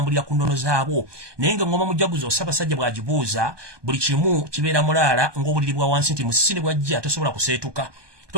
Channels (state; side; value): late; left; 1.2 ms